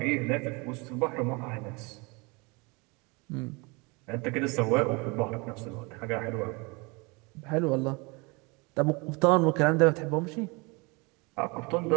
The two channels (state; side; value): quieter; left; 28.0 dB